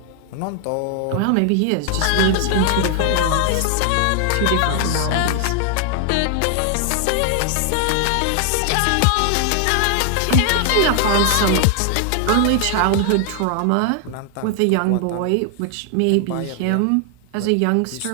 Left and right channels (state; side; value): different; both; correlation 0.00